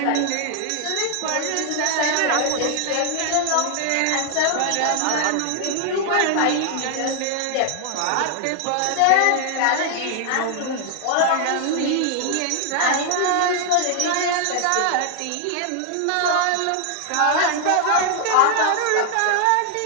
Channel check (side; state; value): both; different; correlation 0.00